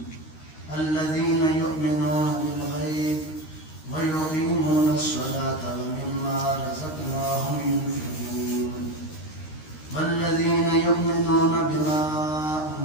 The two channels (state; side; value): late; right; 13 ms